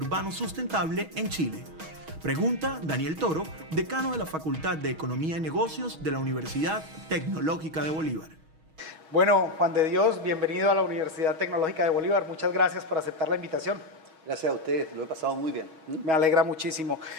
Sustentable en Chile. Pregunta Daniel Toro, decano de la Facultad de Economía y Negocios de la Universidad Tecnológica de Bolívar. Bueno, Juan de Dios, bienvenido a la Universidad Tecnológica de Bolívar. Muchas gracias por aceptar la invitación. Gracias a ustedes, lo he pasado muy bien. Me alegra muchísimo.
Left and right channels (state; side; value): late; left; 6.3 ms